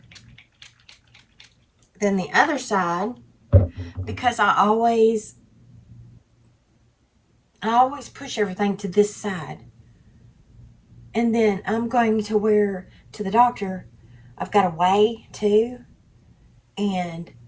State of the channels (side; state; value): both; identical; correlation 1.00